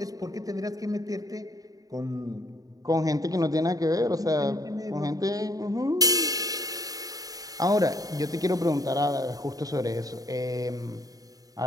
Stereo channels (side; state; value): left; late; 0.18 ms